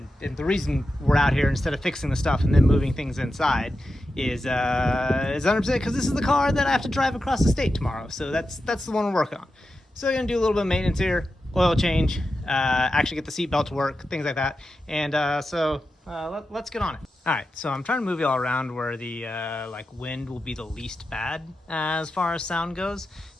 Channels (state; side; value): normal; both; correlation 0.90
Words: the reason we're out here instead of fixing the stuff and then moving things inside is 100% because this is the car that I have to drive across the state tomorrow. So that's the one we're working on. So we're gonna do a little bit of maintenance here, oil change, actually get the seatbelt to work, things like that, and let's get on it. All right, so I'm trying to move you all around where the wind will be the least bad as far as sound goes.